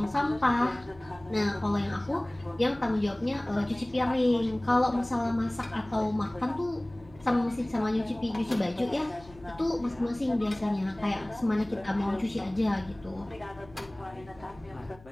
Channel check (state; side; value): noise; left; hum, 23 dB below the sound